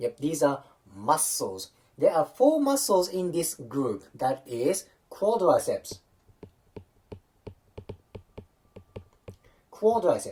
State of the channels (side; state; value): both; identical; correlation 1.00